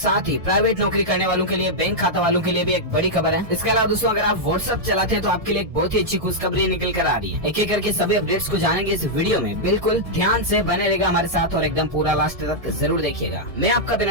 ही प्राइवेट नौकरी करने वालों के लिए, बैंक खाता वालों के लिए भी एक बड़ी खबर है। इसके अलावा दोस्तों अगर आप व्हाट्सएप चलाते हैं तो आपके लिए एक बहुत ही अच्छी खुशखबरी निकल कर आ रही है। एक एक करके सभी अपडेट्स को जानेंगे इस वीडियो में, बिल्कुल ध्यान से बने रहेगा हमारे साथ और एकदम पूरा लास्ट तक जरूर देखिएगा। मैं आपका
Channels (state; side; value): late; left; 1.7 ms